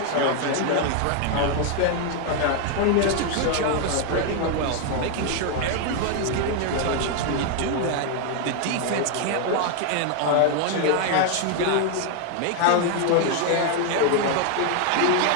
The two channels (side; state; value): both; different; correlation 0.00